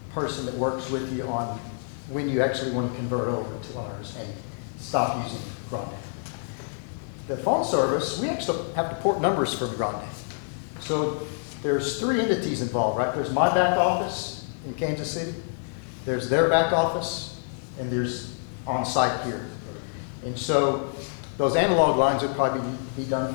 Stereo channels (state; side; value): silent; right; digital silence